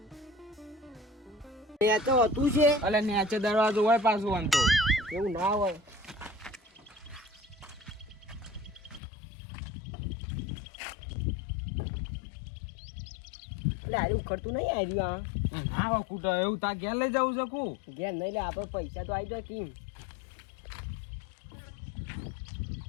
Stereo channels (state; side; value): drops out; right; at 9.0 s